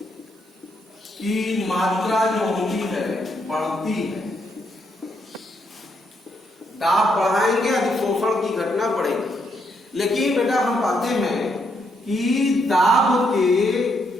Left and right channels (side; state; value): both; normal; correlation 0.77